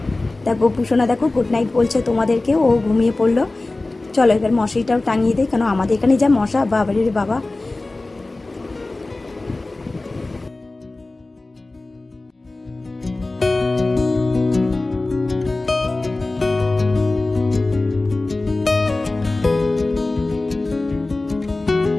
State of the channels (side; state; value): right; quieter; 3.1 dB